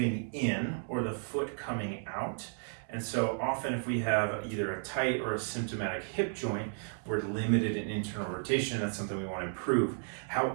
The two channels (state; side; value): silent; left; 55 dB below the other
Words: in or the foot coming out. And so often if we have either a tight or a symptomatic hip joint, we're limited in internal rotation. That's something we want to improve.